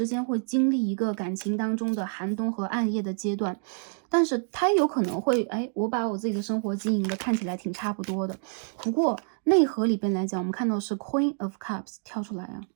间会经历一个感情当中的寒冬和暗夜的阶段，但是他有可能会我把我自己的生活经营的看起来挺差不多的。不过内核里边来讲，我们看到是 Queen of Cups 跳出来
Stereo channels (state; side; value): silent; left; 60 dB below the other